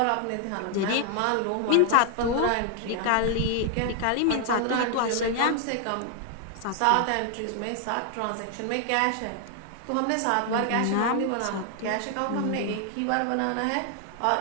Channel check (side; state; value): both; different; correlation 0.00